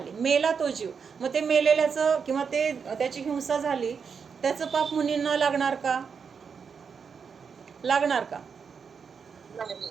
मेला तो जीव. मग ते मेलेल्याचं किंवा त्याची हिंसा झाली, त्याचं पाप मुनींना लागणार का? लागणार का?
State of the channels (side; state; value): left; quieter; 6.1 dB